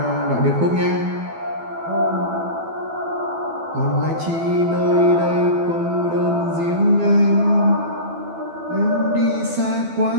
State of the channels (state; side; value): late; left; 12 ms